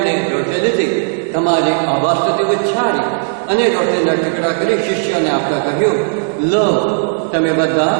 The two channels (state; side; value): silent; left; digital silence